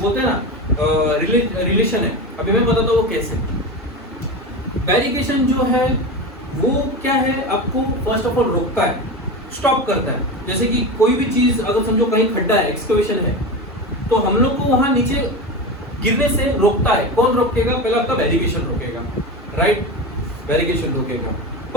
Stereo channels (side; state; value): both; normal; correlation 0.23